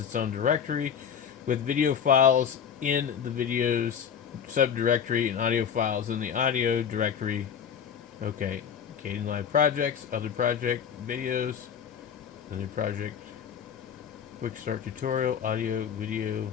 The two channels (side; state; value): right; quieter; 7.7 dB